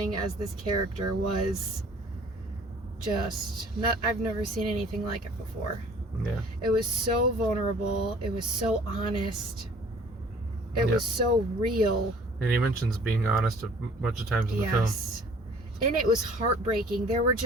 as this character was just I've never seen anything like it before. Yeah. It was so vulnerable. It was so honest. It was so real. And he mentions being honest a bunch of times in the film. And it was heartbreaking. There were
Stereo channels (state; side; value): normal; both; correlation 0.52